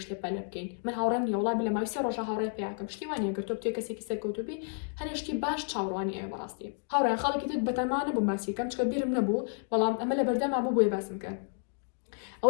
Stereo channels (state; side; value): silent; right; 57 dB below the other